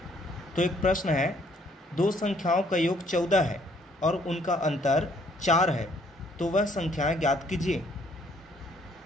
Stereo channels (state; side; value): normal; both; correlation 0.64